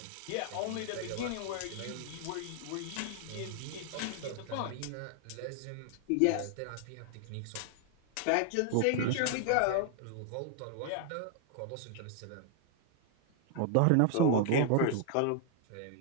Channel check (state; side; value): different; both; correlation 0.00